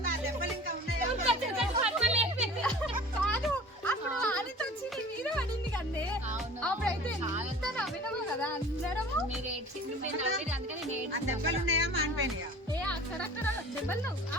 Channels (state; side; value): normal; both; correlation 0.43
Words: కాదు, అప్పుడు ఆదితో వచ్చి నీ మీద పడింది కదే. అప్పుడైతే ఎంత నవ్వినావు కదా అందరము. మీరు అందుకని దెబ్బలున్నాయా మానిపోయినాయా? అక్కడక్కడ దెబ్బలు.